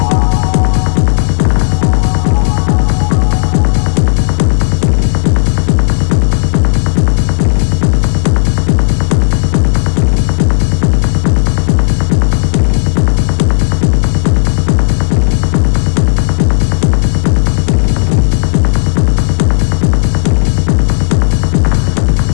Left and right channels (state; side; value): silent; right; digital silence